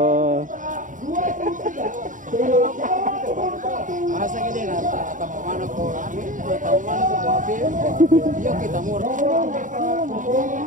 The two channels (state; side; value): late; left; 0.38 ms